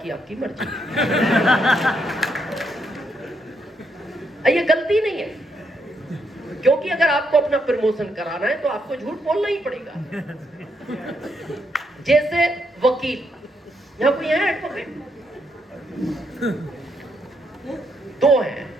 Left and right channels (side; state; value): both; normal; correlation 0.77